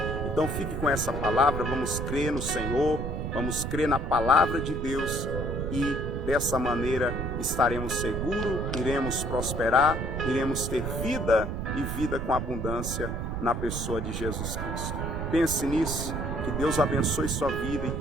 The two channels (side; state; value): right; noise; rumble, 3 dB below the sound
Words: Então fique com essa palavra, vamos crer no Senhor, vamos crer na palavra de Deus e dessa maneira estaremos seguros, iremos prosperar, iremos ter vida e vida com abundância na pessoa de Jesus Cristo. Pense nisso, que Deus abençoe sua vida e